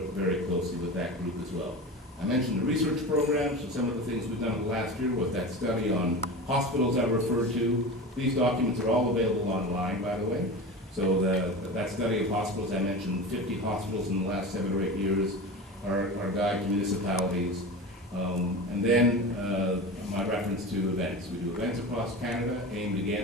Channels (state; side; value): normal; both; correlation 0.29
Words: very closely with that group as well. I mentioned the research program, so some of the things we've done in the last year was that study on hospitals I referred to. These documents are all available online, by the way. So that study of hospitals, I mentioned 50 hospitals in the last 7 or 8 years, our guide to municipalities. And then my reference to events. We do events across Canada aimed